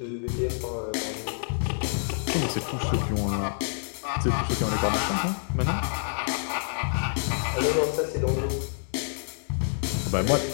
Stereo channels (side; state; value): right; silent; digital silence